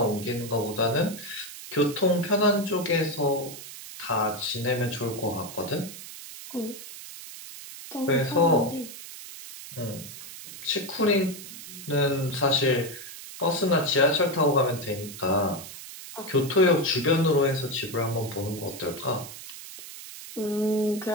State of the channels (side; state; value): right; noise; hiss, 13 dB below the sound